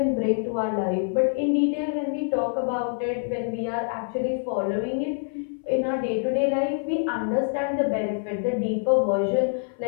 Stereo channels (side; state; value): right; silent; 61 dB below the other